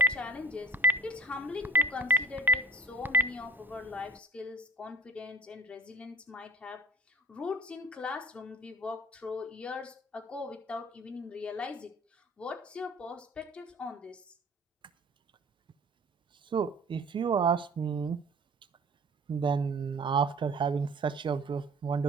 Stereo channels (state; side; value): normal; both; correlation 0.46